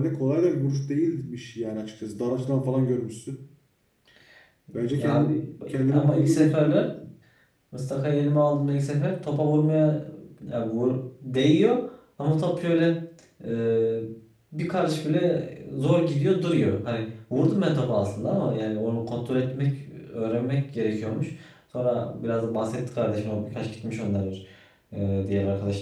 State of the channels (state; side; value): identical; both; correlation 1.00